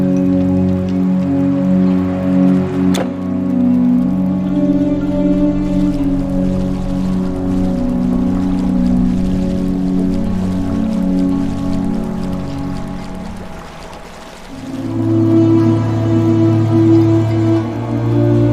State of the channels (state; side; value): identical; both; correlation 1.00